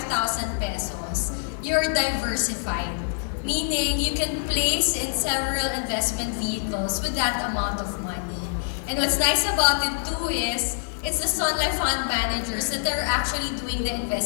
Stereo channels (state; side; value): silent; right; 56 dB below the other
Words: pesos, you're diversified. Meaning, you can place in several investment vehicles with that amount of money. And what's nice about it too is, it's the Sun Life Fund managers that are actually doing the